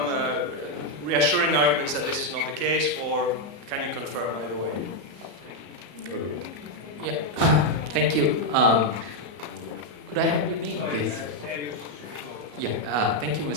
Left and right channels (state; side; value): late; left; 34 ms